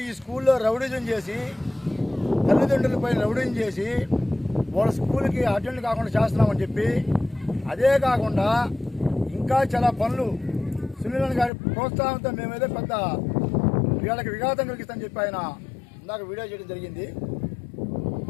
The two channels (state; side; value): drops out; right; at 11.5 s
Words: ఈ స్కూల్లో రౌడీజం చేసి తల్లిదండ్రులపై రౌడీజం చేసి వాళ్ళ స్కూల్కి అటెండ్ కాకుండా చేస్తున్నామని చెప్పి, అదే కాకుండా ఇంకా చాలా పనులు సునీలన్న గారి ప్రోత్సాహంతో మేమేదో పెద్ద వీళ్ళకి విఘాతం కలిగిస్తామని చెప్పి ఆయన ఇందాక వీడియో చేయడం జరిగింది.